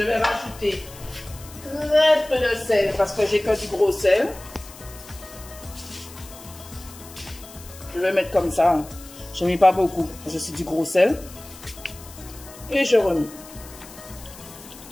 vais rajouter très peu de sel parce que j'ai que du gros sel. Je vais mettre comme ça. Je ne mets pas beaucoup. Je suis du gros sel. Et je remets.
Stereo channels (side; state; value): left; noise; hiss, 18 dB below the sound